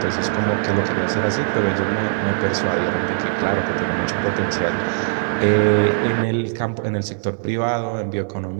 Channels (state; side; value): silent; left; 62 dB below the other